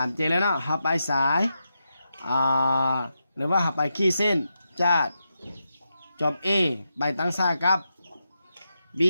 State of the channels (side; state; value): both; inverted; correlation -0.86